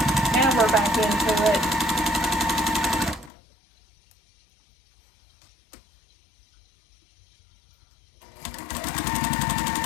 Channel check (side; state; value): right; drops out; at 3.3 s